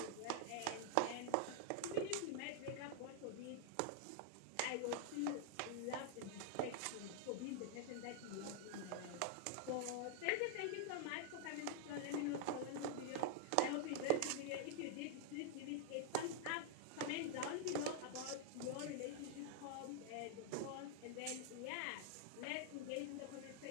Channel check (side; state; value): both; different; correlation 0.00